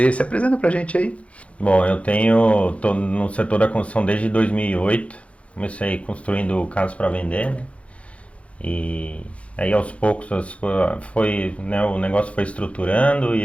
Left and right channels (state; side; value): late; right; 0.063 ms